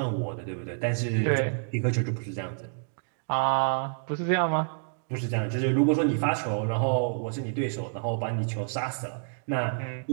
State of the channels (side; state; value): left; silent; digital silence